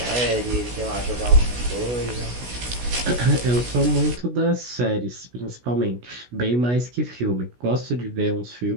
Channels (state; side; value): late; left; 16 ms